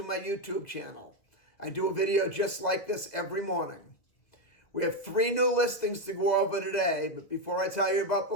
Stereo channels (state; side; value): late; right; 1.9 ms